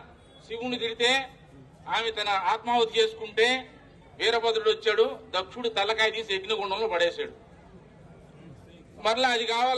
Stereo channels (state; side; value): identical; both; correlation 1.00